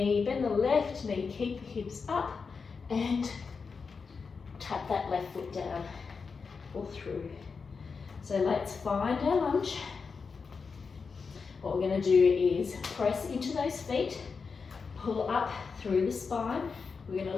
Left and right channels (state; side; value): quieter; right; 5.1 dB